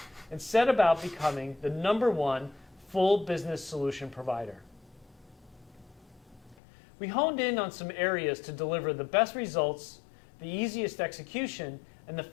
and set about becoming the #1 full business solution provider. We honed in on some areas to deliver the best results, the easiest execution, and the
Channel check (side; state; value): right; drops out; at 6.6 s